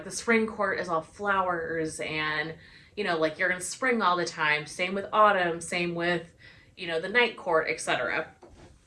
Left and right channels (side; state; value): both; identical; correlation 1.00